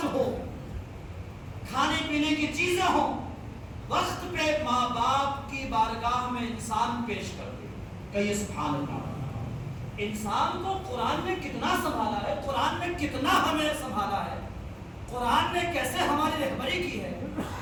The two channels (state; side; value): identical; both; correlation 1.00